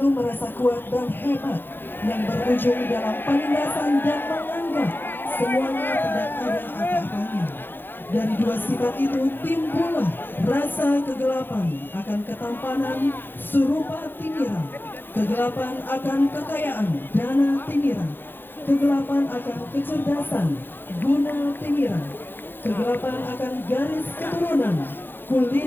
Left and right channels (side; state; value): right; late; 0.099 ms